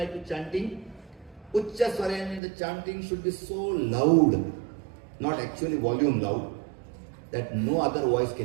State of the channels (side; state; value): left; drops out; at 2.4 s